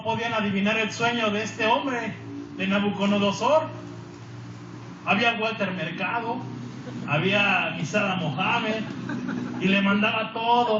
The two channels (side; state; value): both; identical; correlation 1.00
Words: podían adivinar el sueño de este hombre, de Nabucodonosor. Había Walter Mercado, había Misada Mohamed, y le mandaba